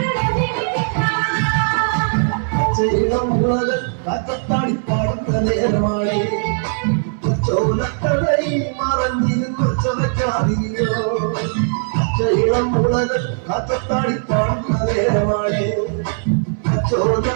പച്ചയിളം മുളകൾ കാറ്റത്താടി പാടുന്ന നേരമാണ് ചോലക്കടയിൽ മറഞ്ഞിരുന്നൊച്ചവയ്ക്കാറിയോ പച്ചയിളം മുളകൾ കാറ്റത്താടി പാടുന്ന നേരമാണ്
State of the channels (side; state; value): left; silent; 63 dB below the other